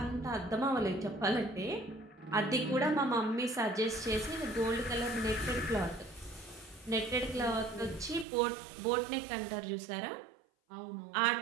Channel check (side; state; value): left; drops out; at 8.2 s